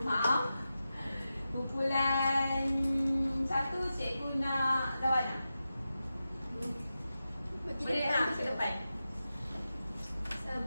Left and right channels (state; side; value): inverted; both; correlation -0.91